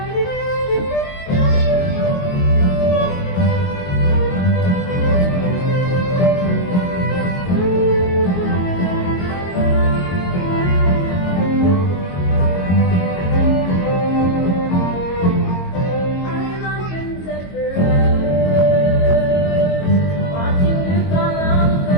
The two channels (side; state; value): right; late; 22 ms